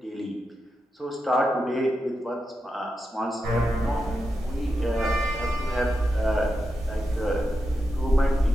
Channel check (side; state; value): both; normal; correlation 0.88